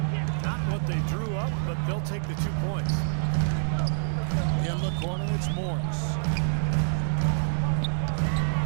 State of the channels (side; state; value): left; silent; digital silence